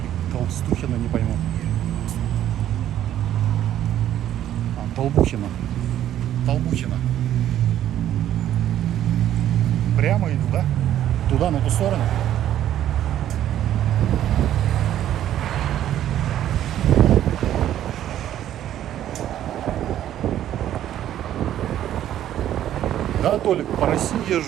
Толстухина, не пойму. Толбухина. Прямо иду, да? Туда, на ту сторону. Да, Толик, по России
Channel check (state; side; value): quieter; left; 11.6 dB